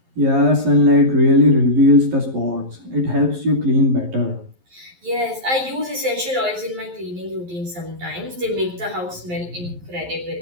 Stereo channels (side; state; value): left; late; 11 ms